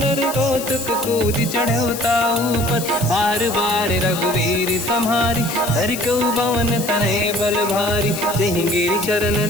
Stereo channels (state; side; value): noise; left; hiss, 9 dB below the sound